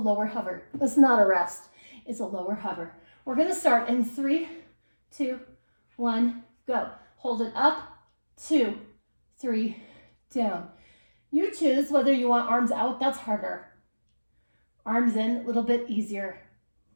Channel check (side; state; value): both; inverted; correlation -1.00